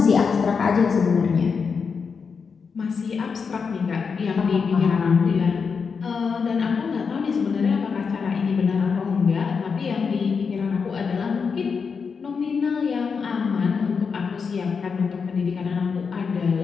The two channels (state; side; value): quieter; right; 5.6 dB